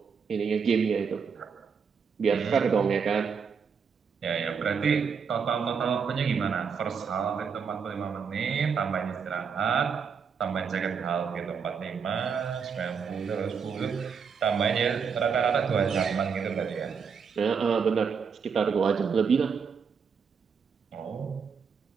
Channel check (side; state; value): left; quieter; 6.2 dB